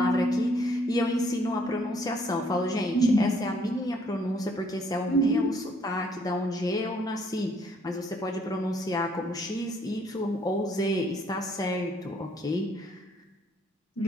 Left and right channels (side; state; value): both; normal; correlation 0.65